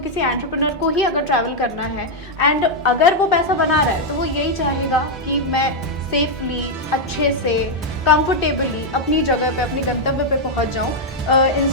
एंटरप्रेन्योर को ही अगर ट्रैवल करना है एंड अगर वो पैसा बना रहा है, तो वो यही चाहेगा कि मैं सेफली, अच्छे से, कंफर्टेबली अपनी जगह पे, अपने गंतव्य पे पहुंच जाऊं,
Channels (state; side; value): normal; both; correlation -0.01